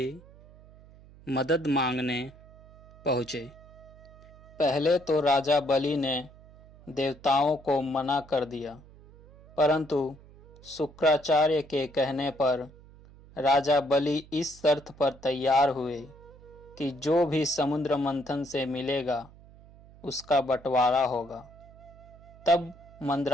मदद मांगने पहुंचे। पहले तो राजा बलि ने देवताओं को मना कर दिया, परंतु शुक्राचार्य के कहने पर राजा बलि इस शर्त पर तैयार हुए कि जो भी समुद्र मंथन से मिलेगा उसका बंटवारा होगा। तब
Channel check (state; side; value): noise; right; hum, 22 dB below the sound